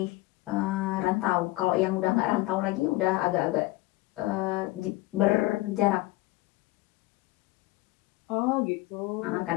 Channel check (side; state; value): right; quieter; 19.3 dB